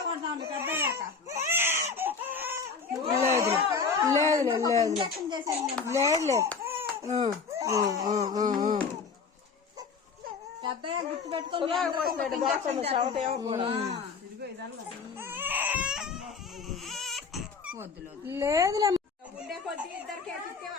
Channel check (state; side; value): quieter; right; 5.2 dB